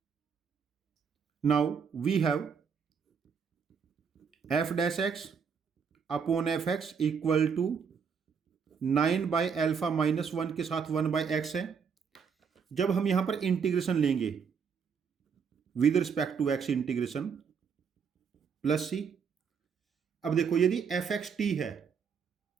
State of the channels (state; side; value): quieter; left; 6.4 dB